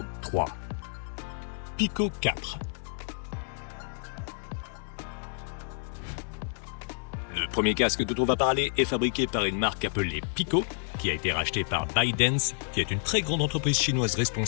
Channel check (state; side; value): silent; right; digital silence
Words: 3. Pico 4. Le premier casque dont on va parler est fabriqué par une marque appelée Pico, qui a été rachetée par ByteDance, qui est une très grande entreprise chinoise